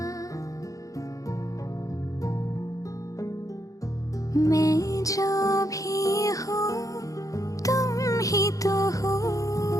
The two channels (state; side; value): late; right; 0.16 ms